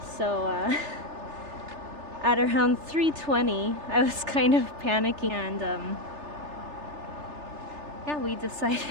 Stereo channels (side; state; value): left; late; 3.3 ms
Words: So at around 3:20, I was kind of panicking, and yeah, we